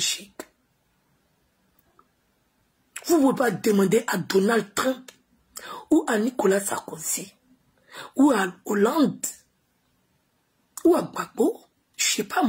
Vous ne pouvez pas demander à Donald Trump ou à Nicolas Sarkozy ou à Hollande ou à Gbagbo, je ne sais pas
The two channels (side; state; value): both; identical; correlation 1.00